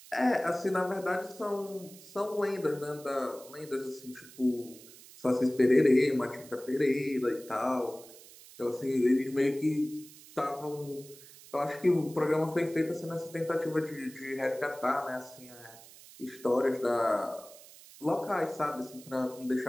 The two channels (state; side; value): noise; right; hiss, 20 dB below the sound